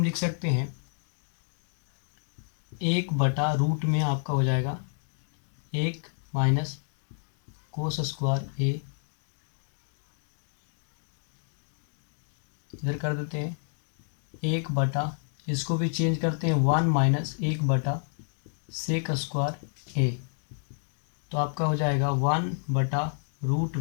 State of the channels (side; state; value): right; silent; digital silence